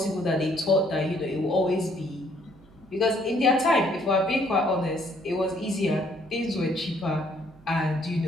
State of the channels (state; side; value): noise; right; hum, 26 dB below the sound